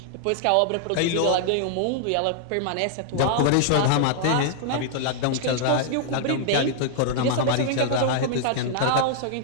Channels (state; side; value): different; both; correlation -0.01